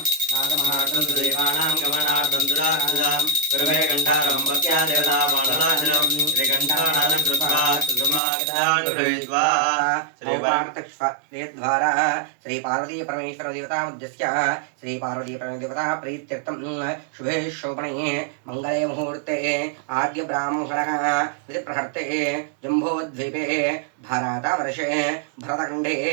దేవానాం గమనార్థం దురార్థం గురవే కంఠ गन्धारं भक्त्या देवतामानलाञ्जनं श्रीकण्ठानादं कृत्वा सुषमाक्षदान् गृहीत्वा द्वारा श्री पार्वती परमेश्वर देवता मध्यस्य श्री पार्वती परमेश्वर देवता प्रीत्यर्थं शुभे शोभने मंगले मुहूर्ते आद्य ब्राह्मणः विधिप्रहर्ते जम्बोद्वीपे भारतवर्षे भरतखण्डे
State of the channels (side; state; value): left; drops out; at 8.2 s